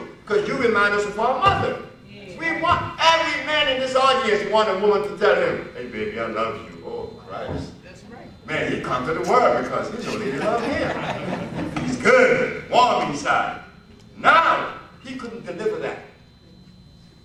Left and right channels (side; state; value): both; identical; correlation 1.00